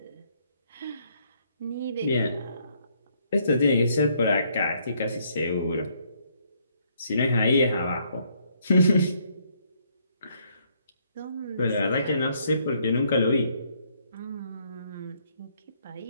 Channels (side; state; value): both; inverted; correlation -0.69